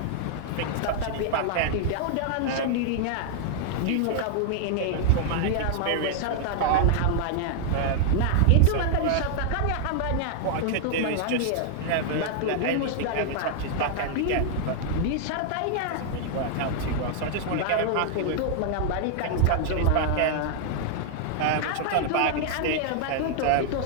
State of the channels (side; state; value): both; different; correlation -0.01